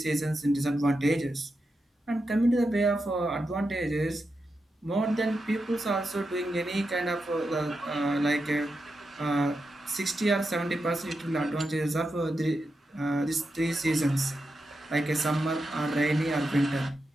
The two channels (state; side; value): normal; both; correlation 0.88